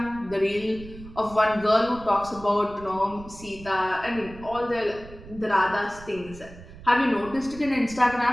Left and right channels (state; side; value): noise; right; rumble, 17 dB below the sound